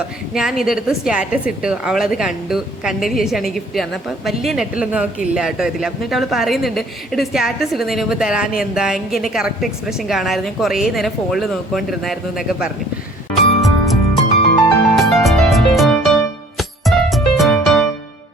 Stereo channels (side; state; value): both; normal; correlation 0.55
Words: ഞാൻ ഇതെടുത്ത് സ്റ്റാറ്റസ് ഇട്ടു. അവളത് കണ്ടതിന് ശേഷമാണ് ഈ ഗിഫ്റ്റ് തന്നത്. അപ്പം വലിയ നെറ്റിലൊന്നും അവൾക്ക് ഇല്ല കേട്ടോ ഇതിൽ. എന്നിട്ട് അവൾ പറയുന്നുണ്ട് ഇത് സ്റ്റാറ്റസ് ഇടുന്നതിന് മുമ്പ് തരാൻ എന്താ, എനിക്ക് എൻ്റെ കറക്റ്റ് എക്സ്പ്രഷൻ കാണാമായിരുന്നു, ഞാൻ കുറേ നേരം ഫോണിൽ നോക്കിക്കൊണ്ടിരുന്നായിരുന്നു എന്നൊക്കെ പറഞ്ഞു.